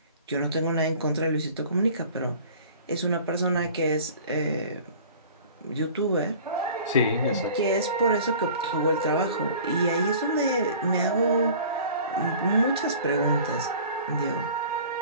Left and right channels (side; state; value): both; inverted; correlation -0.45